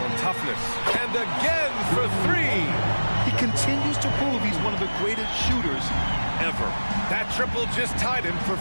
toughness. And again for three. He continues to prove he's one of the greatest shooters ever. That triple just tied him for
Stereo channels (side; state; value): both; inverted; correlation -1.00